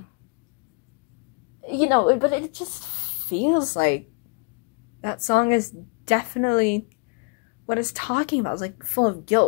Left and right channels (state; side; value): quieter; right; 35.0 dB